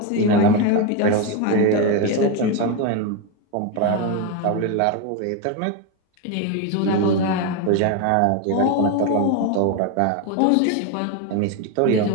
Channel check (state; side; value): different; both; correlation 0.03